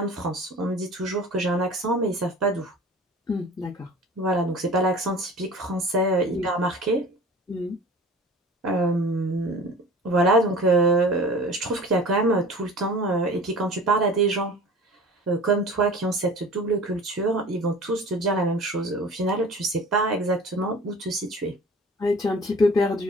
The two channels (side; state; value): both; normal; correlation 0.42